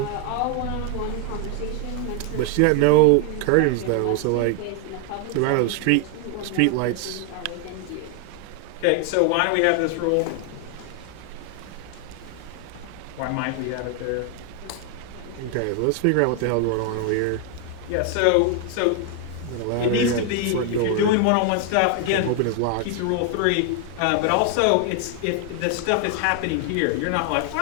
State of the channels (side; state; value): both; different; correlation 0.00